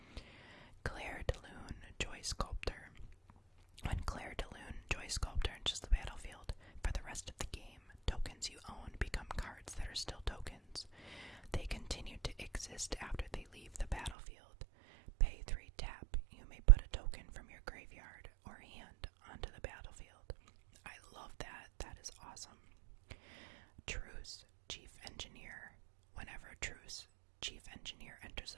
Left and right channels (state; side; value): drops out; left; at 14.2 s